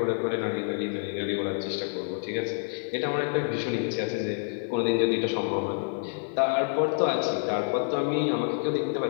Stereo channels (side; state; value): right; silent; digital silence